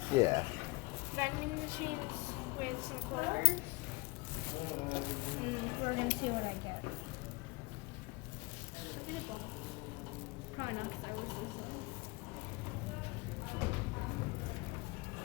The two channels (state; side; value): quieter; right; 24.9 dB